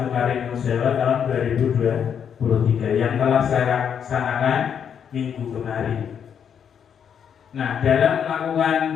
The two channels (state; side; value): quieter; right; 7.9 dB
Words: Karingan Jawa tahun 2023 yang telah saya laksanakan minggu kemarin. Nah, dalam melakukan